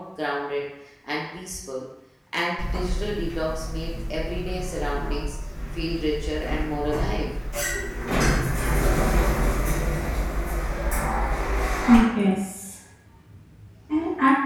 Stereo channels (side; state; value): both; identical; correlation 1.00